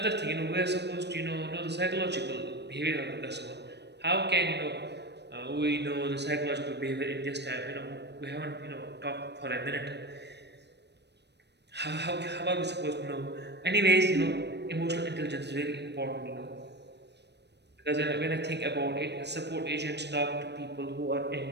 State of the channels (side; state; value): left; late; 0.50 ms